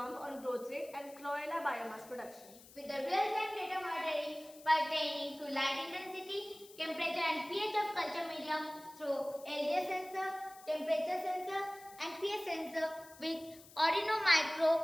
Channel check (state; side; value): noise; left; hiss, 21 dB below the sound